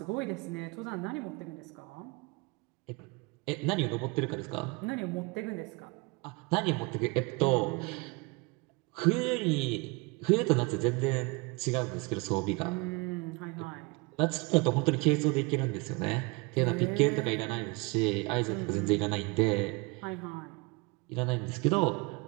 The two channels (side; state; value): left; quieter; 26.9 dB